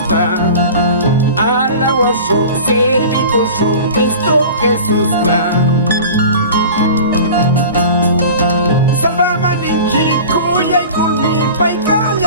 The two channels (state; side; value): inverted; both; correlation -0.38